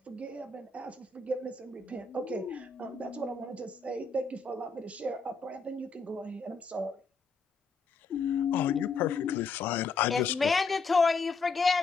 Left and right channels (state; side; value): quieter; right; 4.3 dB